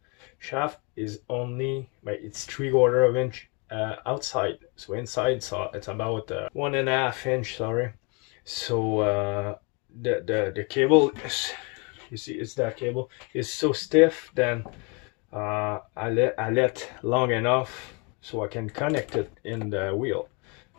shaft, is only it's 3/4 inch outside. So inside, so it's about 1.5 inch, sorry. So the cable is, you see, it's that cable is so stiff. Then I let long enough so I can connect it in the wheel.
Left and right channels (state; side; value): quieter; right; 31.9 dB